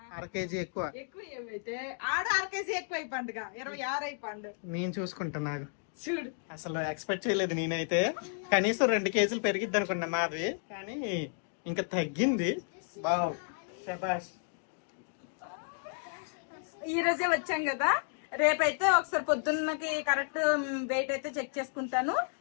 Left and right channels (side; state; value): right; silent; digital silence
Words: 1/2 kg ఎక్కువ. నేను చూసుకుంటా. నాకు చూడు అసలు ఎక్స్పెక్ట్ చేయలేదు నేనైతే. కనీసం 2 kg పెరిగిద్ది అనుకున్నా మాది, కానీ ఇంకా తగ్గింది. బావ్ శబాష్. ఈ రోజే వచ్చాం కదా, రేపైతే ఒకసారి పొద్దున్నకి కరెక్ట్ వెయిట్ అయితే చెక్ చేసుకుంటాను.